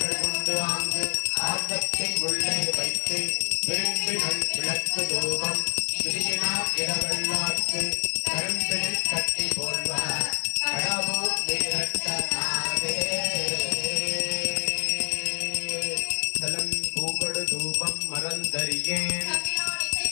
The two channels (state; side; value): silent; right; digital silence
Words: கொண்டு ஆங்கு ஆர்வத்தை உள்ளே வைத்து விரும்பினல் விளக்கு தூபம் விதியினார் இடவல்லார்க்கு கரும்பினில் கட்டி போல்வார் கடவுள் வீரட்டனாவே தலம் பூகொடு தூபம் மறந்தறியேன்